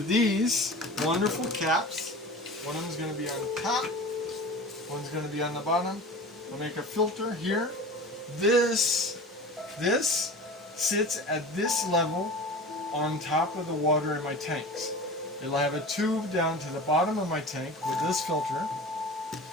these wonderful caps. One of them is going to be on the top, one's going to be on the bottom. We'll make a filter here. This sits at this level on top of the water in my tanks. It'll have a tube down to the bottom of my tank with this filter,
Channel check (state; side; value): normal; both; correlation 0.35